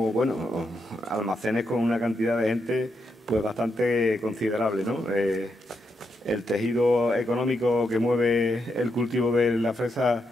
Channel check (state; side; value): normal; both; correlation 0.82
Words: bueno, almacenes con una cantidad de gente pues bastante considerable, ¿no? el tejido económico que mueve el cultivo de la fresa